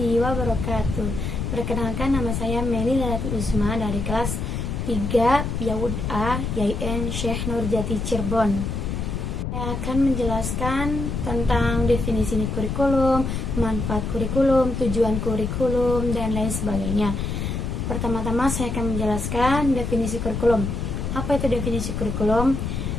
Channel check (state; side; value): noise; left; rumble, 3 dB below the sound